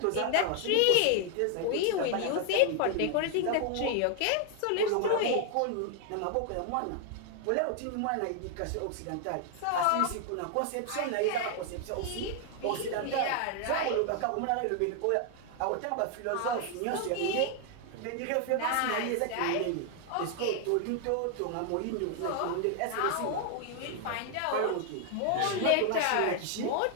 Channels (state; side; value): different; both; correlation 0.00